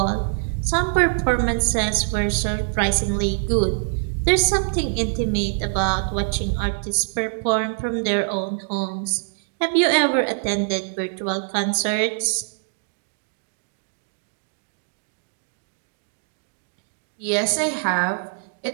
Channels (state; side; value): silent; left; digital silence